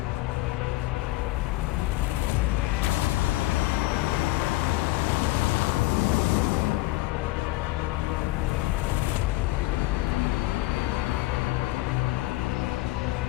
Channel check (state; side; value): quieter; right; 18.8 dB